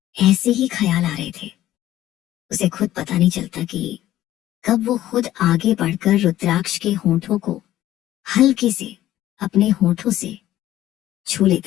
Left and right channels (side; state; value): right; quieter; 13.8 dB